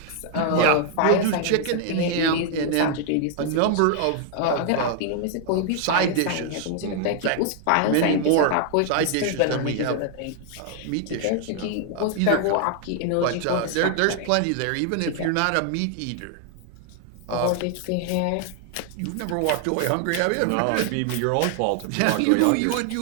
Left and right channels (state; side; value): different; both; correlation 0.00